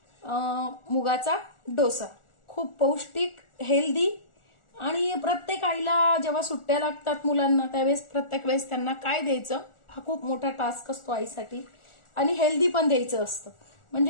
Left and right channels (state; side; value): late; right; 1.4 ms